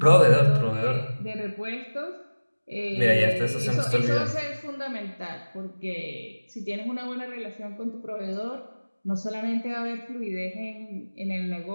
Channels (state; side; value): inverted; both; correlation -1.00